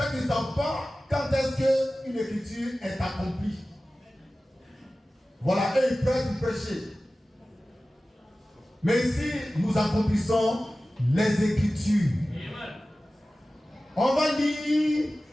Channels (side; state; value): both; normal; correlation 0.96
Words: qu'ils ne savent pas quand est-ce qu'une écriture est accomplie. Voilà, eux ils prêchent, ils prêchent. Mais ici, nous accomplissons les Écritures. On va lire